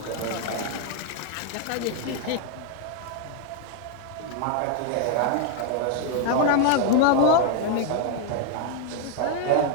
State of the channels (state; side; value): different; both; correlation 0.00